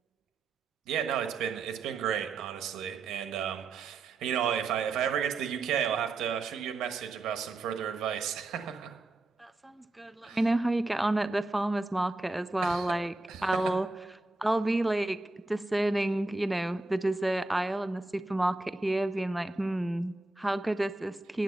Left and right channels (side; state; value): left; quieter; 3.1 dB